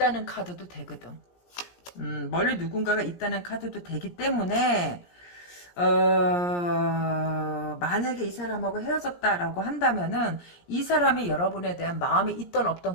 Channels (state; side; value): late; right; 17 ms